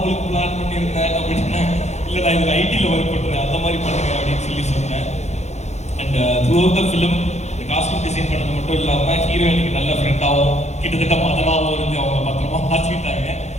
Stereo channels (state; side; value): late; right; 0.33 ms